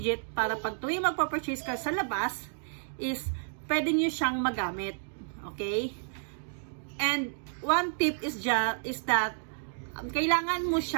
para pag tuwing magpa-purchase ka sa labas is pwede nyo siyang magamit. Okay? And one tip is that kailangan mo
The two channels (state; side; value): silent; left; digital silence